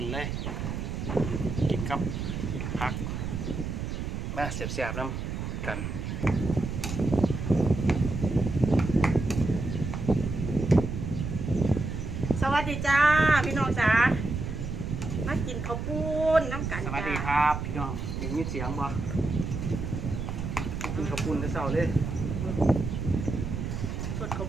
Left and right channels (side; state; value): right; noise; rumble, 4 dB below the sound